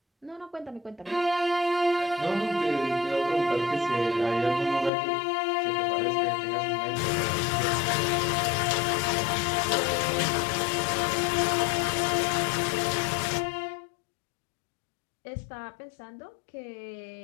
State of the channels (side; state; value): right; drops out; at 4.9 s